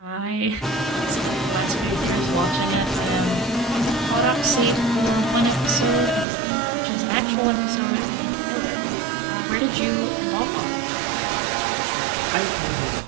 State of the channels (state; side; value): drops out; left; at 6.2 s